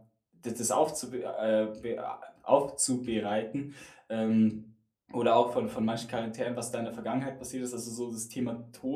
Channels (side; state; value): both; identical; correlation 1.00